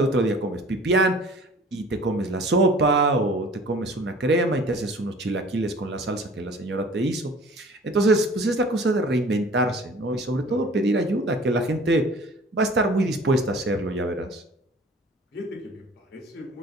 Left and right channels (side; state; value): both; normal; correlation 0.47